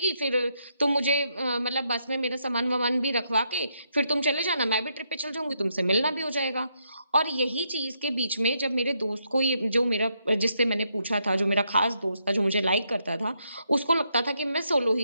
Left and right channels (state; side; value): inverted; both; correlation -0.78